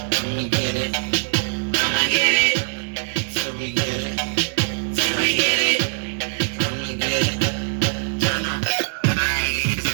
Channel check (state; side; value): silent; left; 64 dB below the other